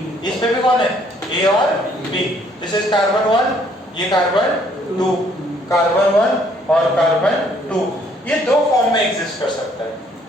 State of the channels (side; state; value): both; normal; correlation 0.64